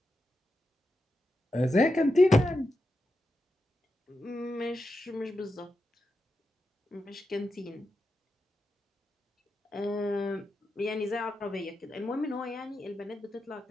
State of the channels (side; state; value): both; normal; correlation 0.88